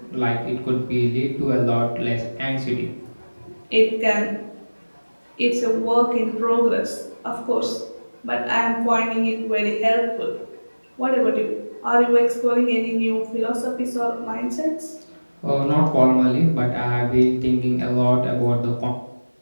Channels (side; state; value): both; inverted; correlation -1.00